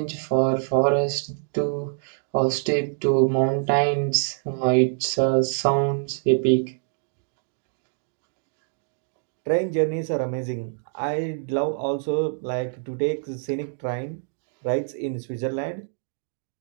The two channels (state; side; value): silent; left; digital silence